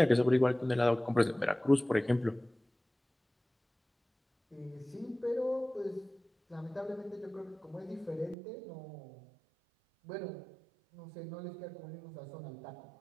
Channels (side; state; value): left; drops out; at 8.3 s